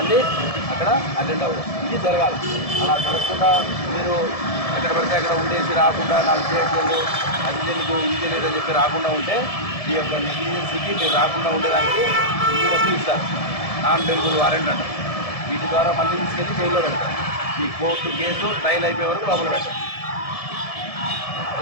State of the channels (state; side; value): late; right; 1.7 ms